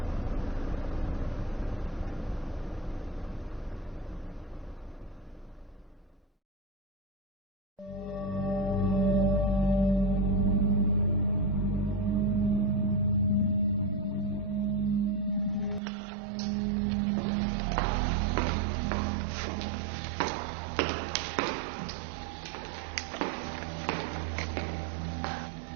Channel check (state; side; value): drops out; left; at 15.8 s